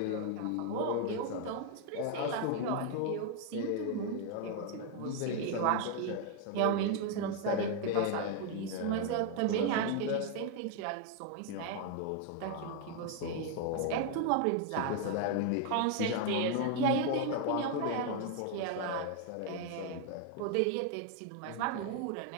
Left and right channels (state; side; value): different; both; correlation 0.00